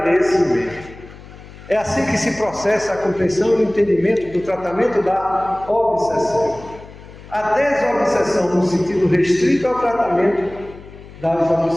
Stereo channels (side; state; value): left; noise; hum, 18 dB below the sound